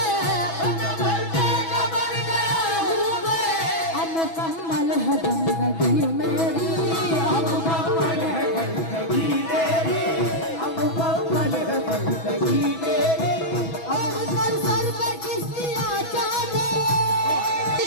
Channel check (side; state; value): right; late; 6.1 ms